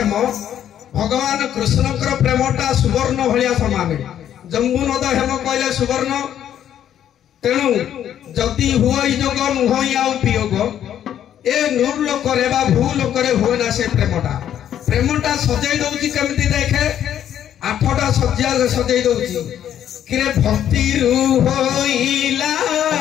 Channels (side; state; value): right; quieter; 10.3 dB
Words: ভগবান কৃষ্ণଙ୍କର ପ୍ରେମଟା ସୁବର୍ଣ୍ଣ ଭଳିଆ ସମାନ ଜମ୍ବୁନଦ ହେମ କହିଲେ ସୁବର୍ଣ୍ଣ ତେଣୁ ଯଦି ହୁଇ ଯୋଗ ନୁହଁ ଆଉ ବିୟୋଗ ଏ ନୂର ଲୋକରେ ବା ଭୂ ଲୋକରେ ହୁଏ ନା ସେ ପ୍ରେମଟା ସଜେଇ ଦଉଛି କେମିତି ଦେଖେ 8ଟା ସଜ୍ଜା ସଜେଇ ଦଉଛି କିରେ ଭକ୍ତିରୁ ହୋଇଲା